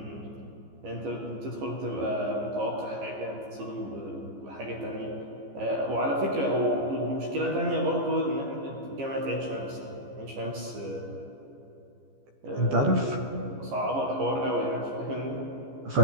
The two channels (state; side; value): late; left; 15 ms